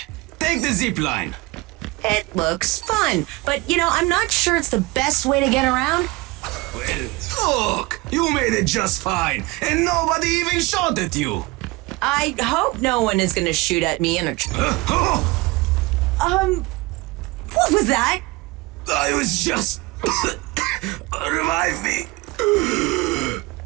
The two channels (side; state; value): left; quieter; 22.6 dB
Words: take the zip line. It looks fun, but I'm not sure it's the best way to get around. Well, look, you made it just fine, and nobody even shot at you. I hope no one is gonna shoot at me in a... What was that? I was just... Revive me.